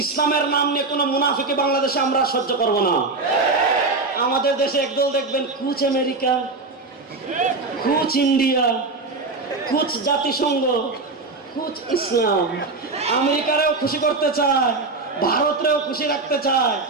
ইসলামের নাম নিয়ে কোনো মুনাফিকি বাংলাদেশে আমরা সহ্য করব না। আমাদের দেশে একদল দেখবেন কুচ আমেরিকা, কুচ ইন্ডিয়া, কুচ জাতিসংঘ, কুচ ইসলাম। আমেরিকারেও খুশি করতে চায়, ভারতরেও খুশি রাখতে চায়,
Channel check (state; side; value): quieter; left; 3.7 dB